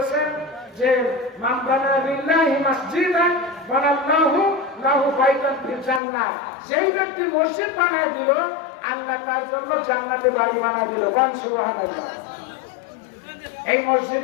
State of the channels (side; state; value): right; drops out; at 6.0 s